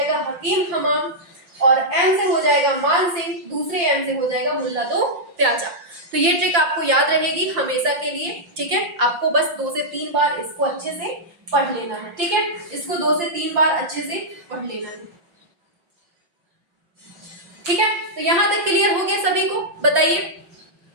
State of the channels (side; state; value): left; late; 5.8 ms